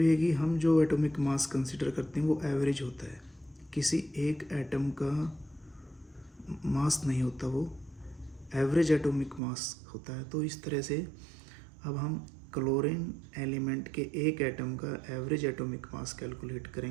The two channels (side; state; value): left; drops out; at 9.4 s